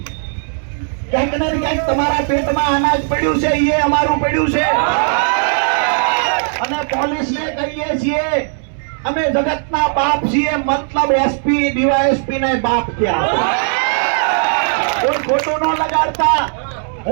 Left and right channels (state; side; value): silent; left; 59 dB below the other